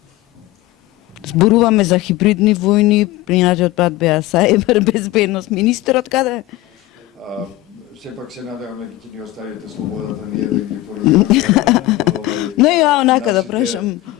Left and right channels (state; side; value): quieter; right; 16.9 dB